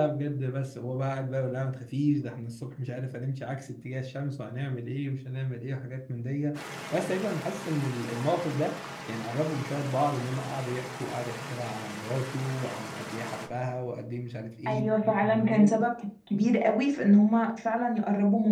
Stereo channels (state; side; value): identical; both; correlation 1.00